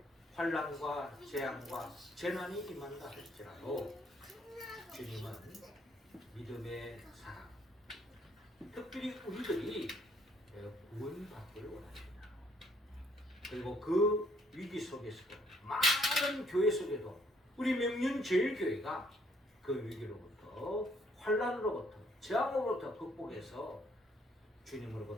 환난과 재앙과 재난이 임한다 할지라도 주님은 믿음의 사람, 특별히 우리들이 구원받기를 원합니다. 그리고 그 위기 속에서도 많은 교회 속에도 우리 명륜제일교회가 그 위기로부터 환난으로부터 재앙으로부터 극복해서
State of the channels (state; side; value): normal; both; correlation 0.66